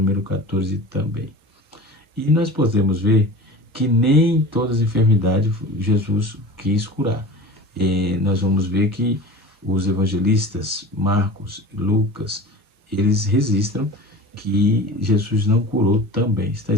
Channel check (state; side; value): normal; both; correlation 0.36